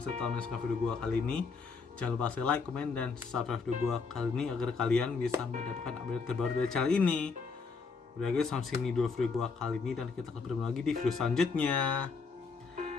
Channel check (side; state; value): right; quieter; 4.8 dB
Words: kasih telah menonton video gua kali ini. Jangan lupa like, komen, dan subscribe video gua kali ini agar kalian bisa mendapatkan update terbaru dari channel ini. Udah guys, sampai sini dulu video gua kali ini, dan kita akan bertemu lagi di video selanjutnya.